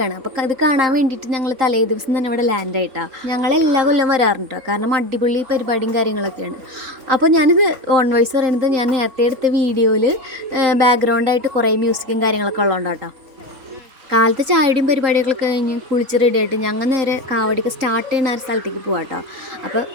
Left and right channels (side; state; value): left; late; 3.8 ms